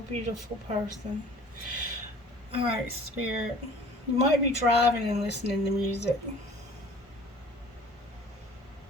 beautiful person. Alright, Spirit. You might be driving and listening to music.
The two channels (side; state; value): both; normal; correlation 0.48